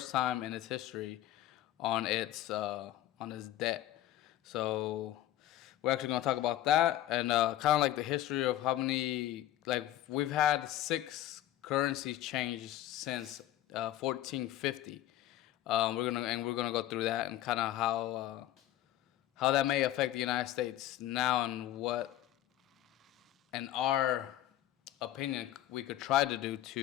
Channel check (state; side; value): quieter; right; 13.7 dB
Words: time in its history on its debt. So we're actually going to talk about that and kind of like the history of how many, like, we've had six currencies changed since 1450. We're gonna go through that and kind of how that may affect the United States now and what, in our opinion, we could try to do